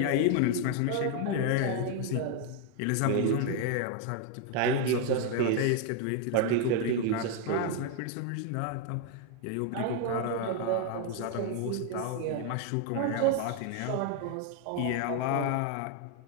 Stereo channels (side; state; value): both; different; correlation 0.00